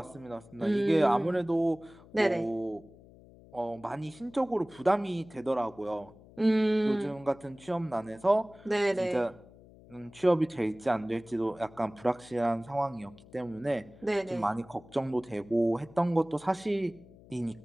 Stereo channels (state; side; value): noise; left; hum, 23 dB below the sound